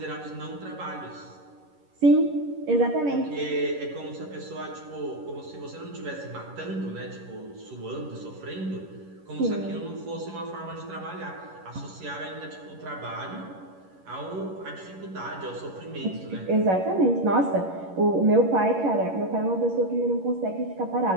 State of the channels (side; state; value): left; late; 11 ms